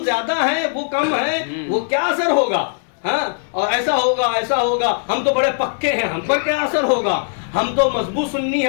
زیادہ ہیں وہ کم ہیں, وہ کیا اثر ہوگا, ہاں اور ایسا ہوگا ایسا ہوگا, ہم تو بڑے پکے ہیں ہم پر کیا اثر ہوگا, ہم تو مضبوط سنی,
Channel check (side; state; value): right; silent; digital silence